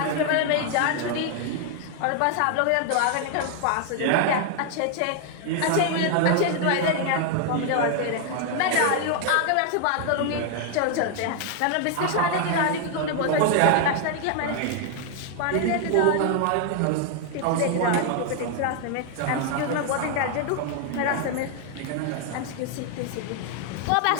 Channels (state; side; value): different; both; correlation 0.00